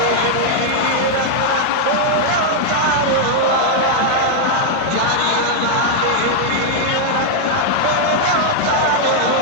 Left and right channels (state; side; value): different; both; correlation 0.00